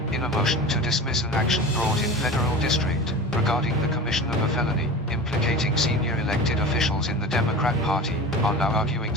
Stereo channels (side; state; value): both; normal; correlation 0.33